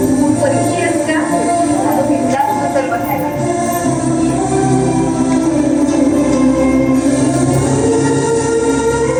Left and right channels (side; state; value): both; identical; correlation 1.00